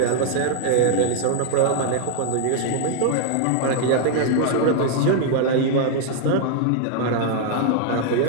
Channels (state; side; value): different; both; correlation 0.00